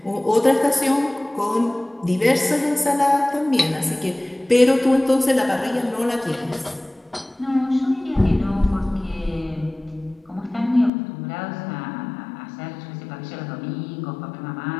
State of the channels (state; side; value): drops out; right; at 10.9 s